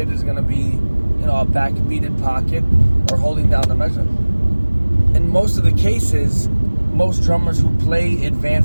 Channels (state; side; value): inverted; both; correlation -1.00